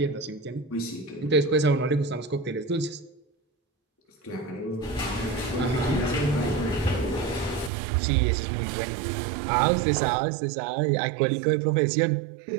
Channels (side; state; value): left; drops out; at 7.7 s